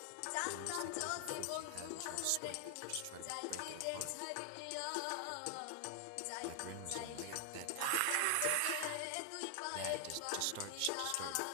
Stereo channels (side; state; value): both; different; correlation 0.00